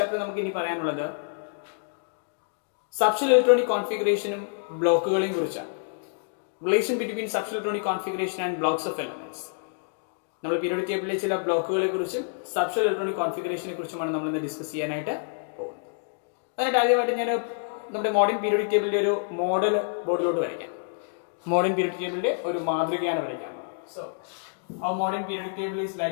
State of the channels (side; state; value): right; silent; digital silence